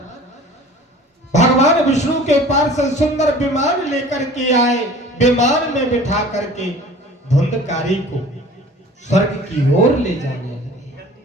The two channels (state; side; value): normal; both; correlation 0.45